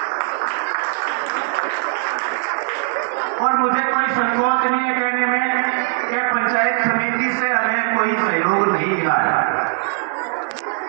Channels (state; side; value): silent; left; 55 dB below the other